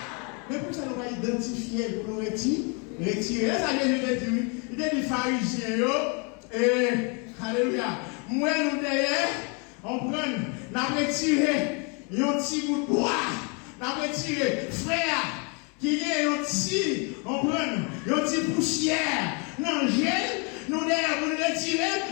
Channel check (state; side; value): quieter; right; 34.7 dB